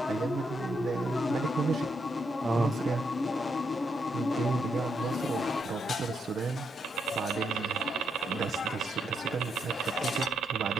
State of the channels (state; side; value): normal; both; correlation 0.79